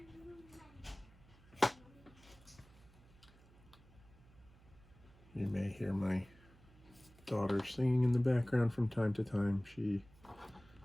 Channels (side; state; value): right; noise; hum, 25 dB below the sound